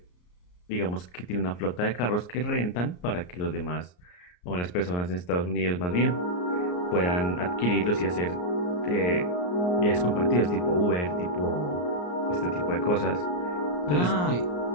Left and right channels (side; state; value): right; late; 34 ms